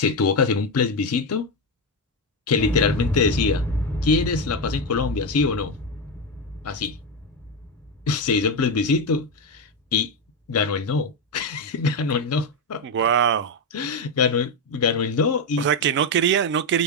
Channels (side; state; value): both; normal; correlation 0.09